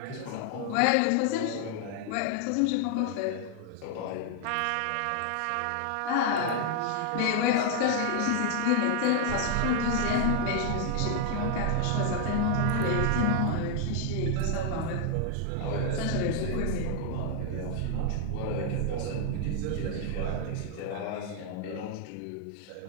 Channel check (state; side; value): different; both; correlation 0.00